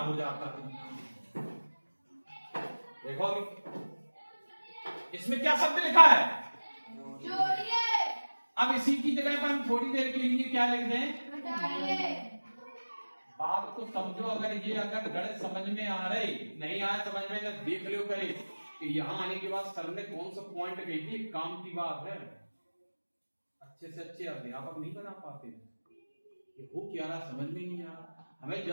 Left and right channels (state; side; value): inverted; both; correlation -1.00